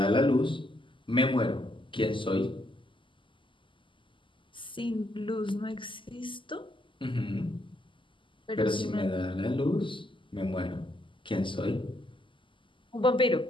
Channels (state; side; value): late; right; 0.25 ms